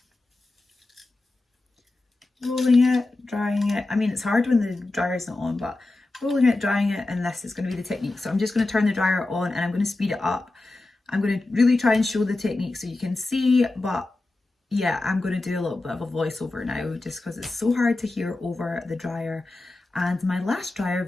drying it. I mean, it's hard when the dryer's not on, but rolling it, drying it, and this is going to be the technique. So I'm just going to turn the dryer on and I'm going to speed it up. I'm going to really try and show the technique so you can see, but yeah, I'm going to do a little bit of a voiceover now just because it's so hard to hear over the dryer. And my last dryer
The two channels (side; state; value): right; quieter; 3.0 dB